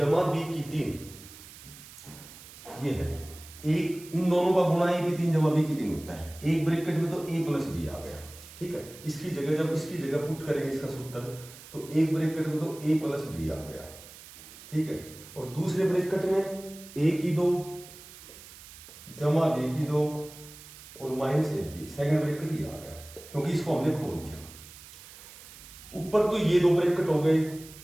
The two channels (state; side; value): noise; right; hiss, 18 dB below the sound